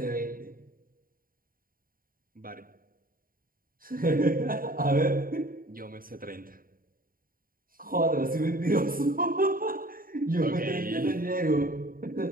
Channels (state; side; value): late; left; 0.41 ms